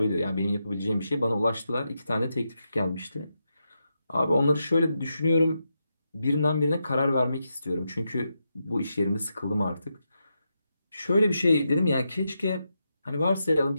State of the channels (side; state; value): both; inverted; correlation -0.85